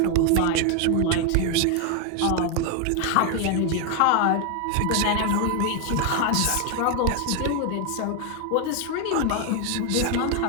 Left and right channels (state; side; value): different; both; correlation 0.01